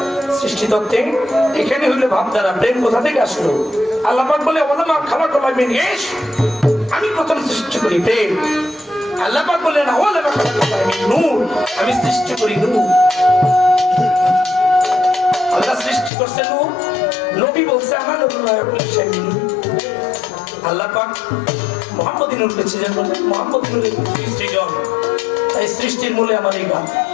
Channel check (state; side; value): drops out; right; at 16.1 s